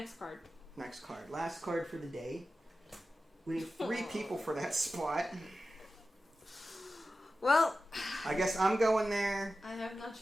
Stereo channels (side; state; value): both; normal; correlation 0.93